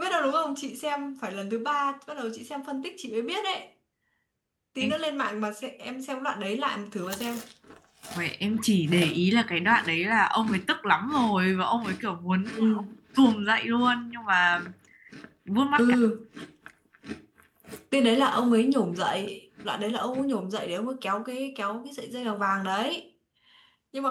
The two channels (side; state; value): both; identical; correlation 1.00